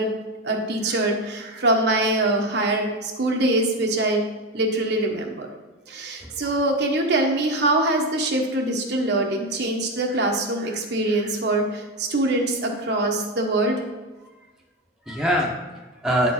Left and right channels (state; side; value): normal; both; correlation 0.16